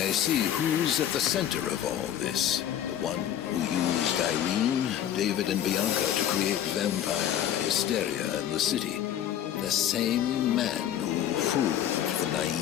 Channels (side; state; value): right; quieter; 10.6 dB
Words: see who's at the center of all this. The one who used Irene, David, and Bianca to create vampire hysteria in the city. The same man who fooled the